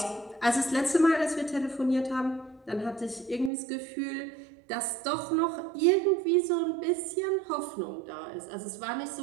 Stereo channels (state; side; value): drops out; left; at 3.5 s